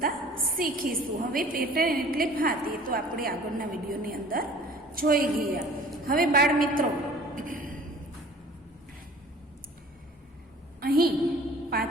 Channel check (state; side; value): normal; both; correlation 0.48